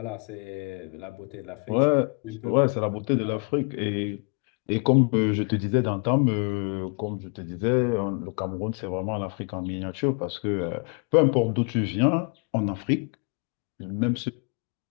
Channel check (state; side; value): quieter; right; 36.0 dB